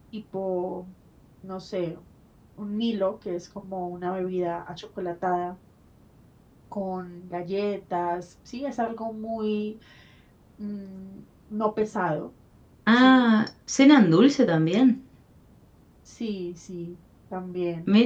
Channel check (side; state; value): both; identical; correlation 1.00